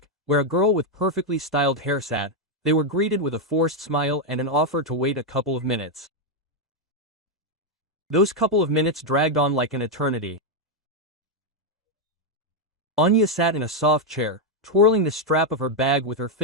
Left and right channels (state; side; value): normal; both; correlation 0.01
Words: where a girl with perfectly styled hair sat, they were greeted with a forced smile and an offer to wait a couple of minutes. Those couple of minutes dragged on like an eternity. Anya sat in a soft chair, twirling the strap of her bag with her